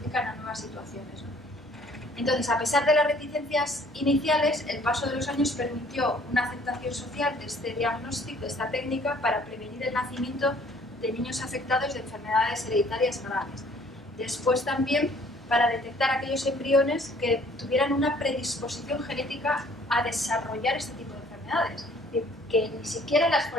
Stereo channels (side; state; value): both; normal; correlation 0.57